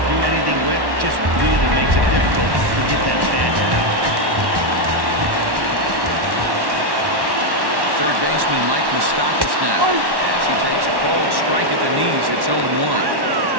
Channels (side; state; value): left; late; 1.1 ms